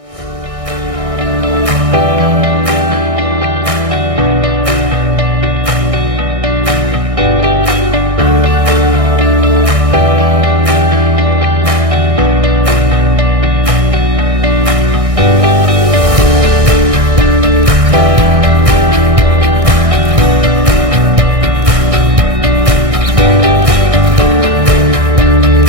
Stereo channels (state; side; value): late; left; 1.6 ms